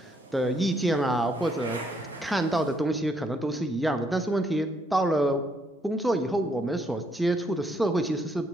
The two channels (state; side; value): normal; both; correlation 0.72